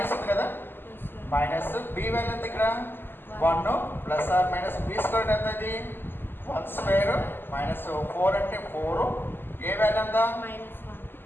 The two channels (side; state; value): right; late; 0.098 ms